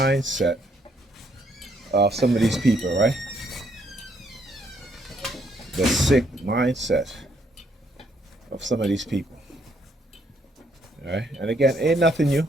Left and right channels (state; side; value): normal; both; correlation 0.70